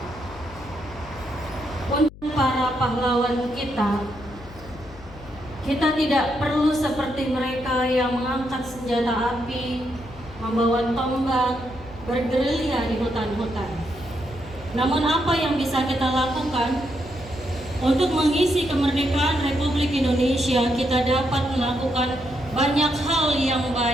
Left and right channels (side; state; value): left; noise; hum, 18 dB below the sound